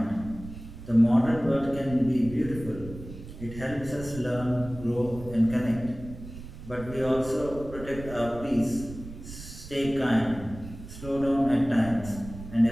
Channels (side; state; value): right; noise; rumble, 13 dB below the sound